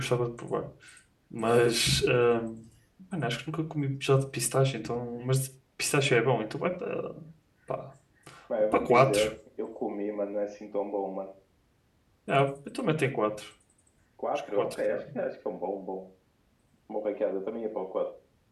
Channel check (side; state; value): both; identical; correlation 1.00